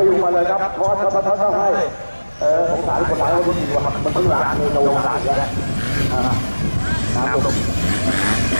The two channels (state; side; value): inverted; both; correlation -1.00